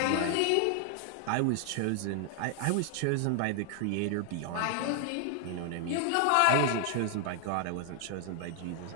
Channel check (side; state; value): both; different; correlation 0.00